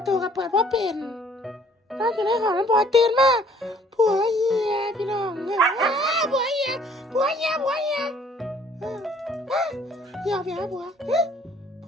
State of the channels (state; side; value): normal; both; correlation 0.58